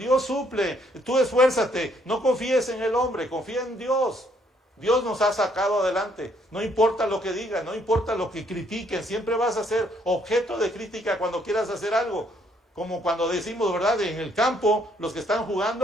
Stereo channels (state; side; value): normal; both; correlation 0.68